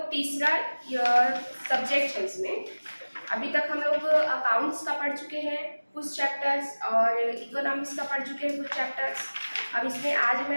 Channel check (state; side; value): inverted; both; correlation -1.00